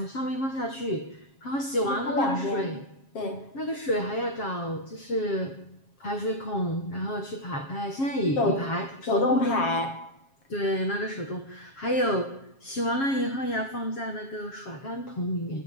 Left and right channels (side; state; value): right; late; 7.4 ms